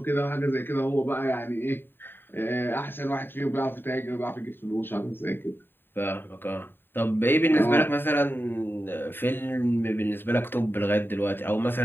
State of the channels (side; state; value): right; late; 0.098 ms